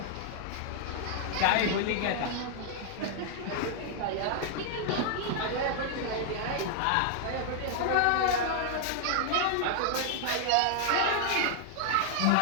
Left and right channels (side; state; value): both; different; correlation 0.00